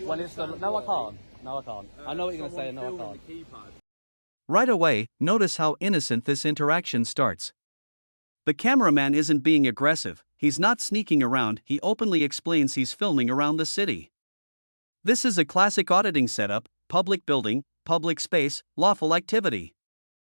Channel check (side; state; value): both; inverted; correlation -1.00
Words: when it's the... understand No, I why, can't. No, I can't. I know what you're going to say, and no, I someone can't. filming the keypad. Right away, notice how innocent this interaction starts. The cameraman isn't being aggressive, he's not sneaking around, he openly explains he's filming around the city. This is a classic auditing setup: public building, public space, lawful activity.